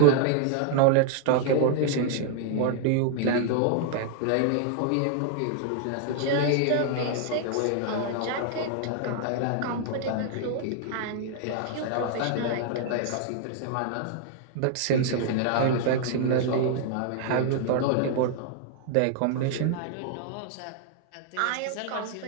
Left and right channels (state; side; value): different; both; correlation 0.00